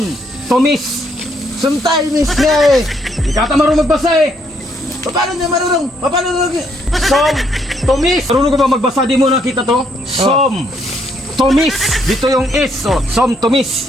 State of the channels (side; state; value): both; normal; correlation 0.71